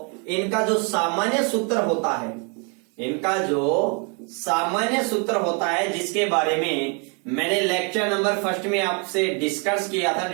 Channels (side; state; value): left; quieter; 36.2 dB